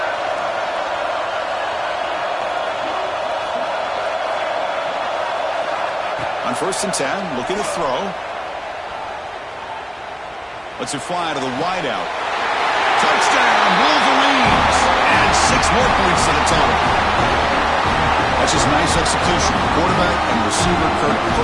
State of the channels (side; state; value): both; identical; correlation 1.00